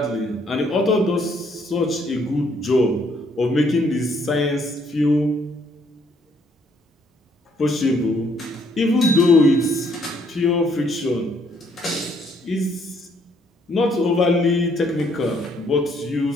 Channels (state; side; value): normal; both; correlation 0.68